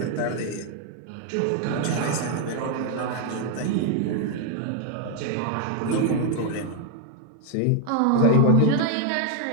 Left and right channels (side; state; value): both; different; correlation 0.00